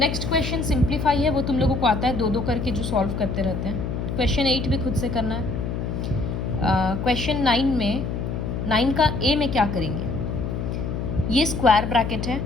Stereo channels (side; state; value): left; noise; hum, 3 dB below the sound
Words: क्वेश्चन सिंप्लीफाई है, वो तुम लोगों को आता है 2-2 करके जो सॉल्व करते रहते हैं। क्वेश्चन 8 भी खुद से करना है। क्वेश्चन 9 में 9 का ए में क्या करेंगे, ये स्क्वायर ब्रैकेट है,